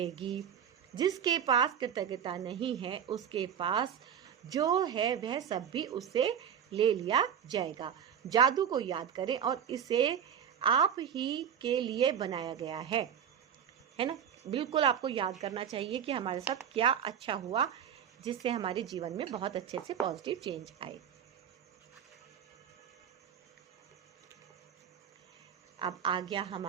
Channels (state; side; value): quieter; left; 8.4 dB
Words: जिसके पास कृतज्ञता नहीं है, उसके पास जो है वह सब भी उससे ले लिया जाएगा। जादू को याद करें और इसे आप ही के लिए बनाया गया है ना। बिल्कुल आपको याद करना चाहिए कि हमारे साथ क्या अच्छा हुआ, जिससे हमारे जीवन में बहुत अच्छे से पॉजिटिव चेंज आए। अब आ गया